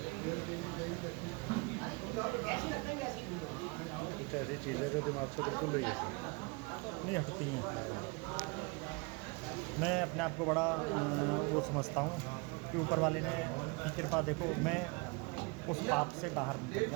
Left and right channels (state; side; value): quieter; left; 28.4 dB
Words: कुछ ऐसी चीज़ें जो दिमाग से बिल्कुल नहीं हटती हैं। मैं अपने आप को बड़ा वो समझता हूँ कि ऊपर वाले ने कृपा, देखो मैं उस पाप से बाहर निकल